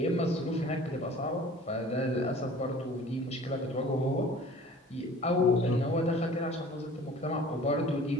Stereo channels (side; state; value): both; normal; correlation 0.46